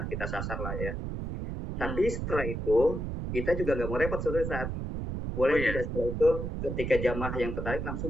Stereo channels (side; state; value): right; noise; rumble, 4 dB below the sound